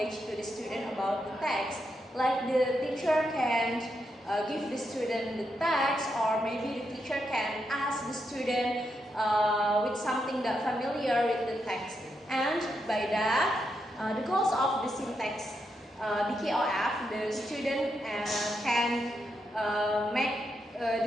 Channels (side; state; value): both; normal; correlation 0.82